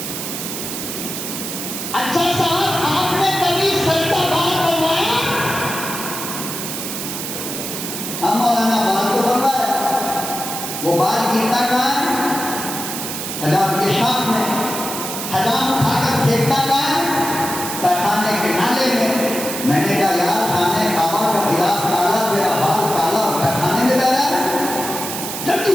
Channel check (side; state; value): right; noise; hiss, 6 dB below the sound